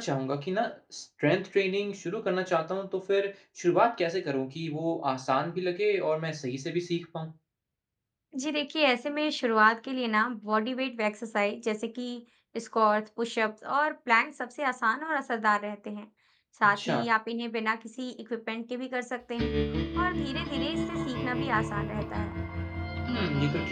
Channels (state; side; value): identical; both; correlation 1.00